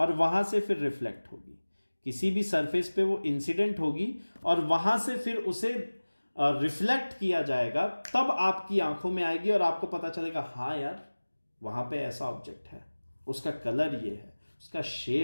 वहां से फिर रिफ्लेक्ट होगी, किसी भी सरफेस पे वो इंसिडेंट होगी और वहां से फिर उसे रिफ्लेक्ट किया जाएगा, तब आपकी आंखों में आएगी और आपको पता चलेगा हाँ यार वहां पे ऐसा ऑब्जेक्ट है, उसका कलर ये है, उसका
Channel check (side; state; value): both; inverted; correlation -1.00